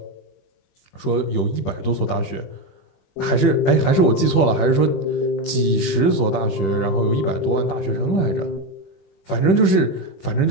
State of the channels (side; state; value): right; late; 21 ms